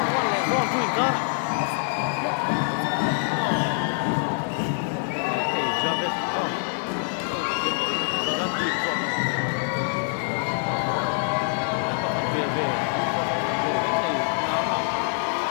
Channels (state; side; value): silent; right; 62 dB below the other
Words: One two ingkar. Hey, Javed. Oh. Gandhi. Bebe.